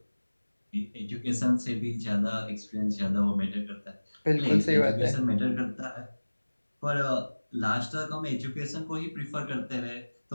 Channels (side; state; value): both; inverted; correlation -1.00